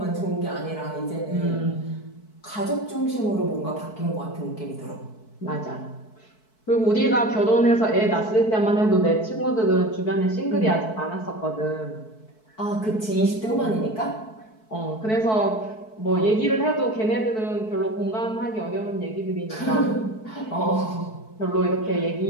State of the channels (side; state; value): right; late; 4.6 ms